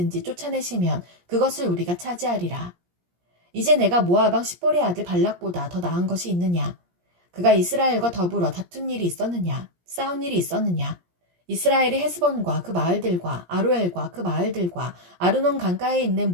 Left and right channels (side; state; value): left; late; 17 ms